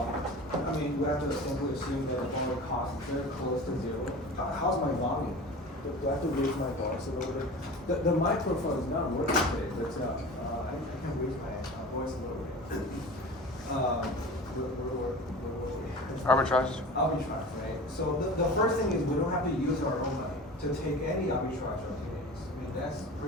have to simply assume that the borrow cost is very close to zero. How's my volume? Do I have to raise my voice a little bit? The microphone is not working today, but I can raise my voice a little bit. Arbitrage. Arbitrage, right? So the first thing is we don't have to use our own money to take any arbitrage opportunities. That's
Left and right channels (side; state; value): both; normal; correlation 0.36